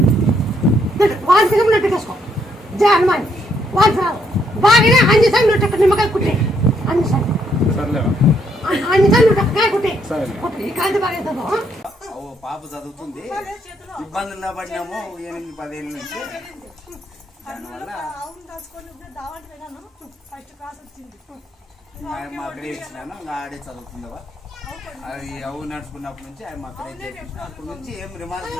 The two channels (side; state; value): both; normal; correlation 0.73